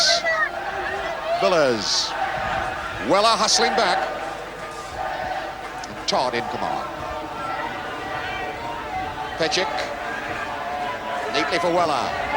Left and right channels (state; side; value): identical; both; correlation 1.00